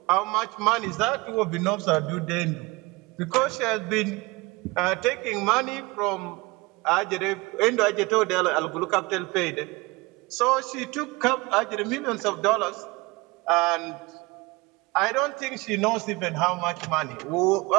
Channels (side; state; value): left; quieter; 24.0 dB